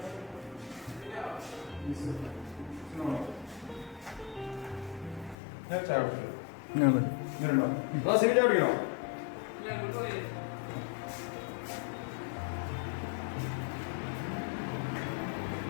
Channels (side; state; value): right; drops out; at 5.4 s